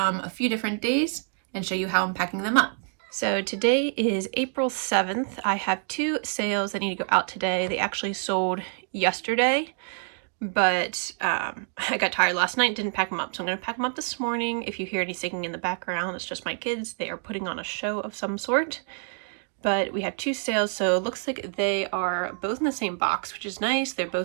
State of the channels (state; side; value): silent; left; 55 dB below the other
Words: a few different days, and show you how I'm packing them up. So today is April 7th. I have two sales that need to go out today. They actually sold yesterday, but I got tired last night and didn't pack them up. So I'm going to pack them up this morning. If you hear any singing in the background, it's just my kids. They are putting on a show of some sort. But we have two sales, so it looks like they are both in the same box, which is nice. They're